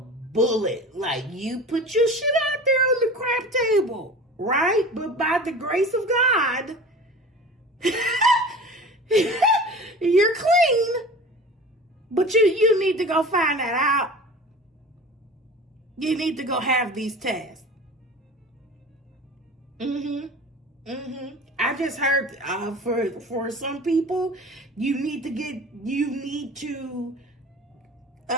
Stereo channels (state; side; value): normal; both; correlation 0.38